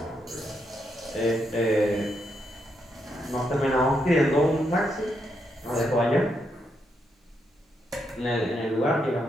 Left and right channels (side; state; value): both; normal; correlation 0.80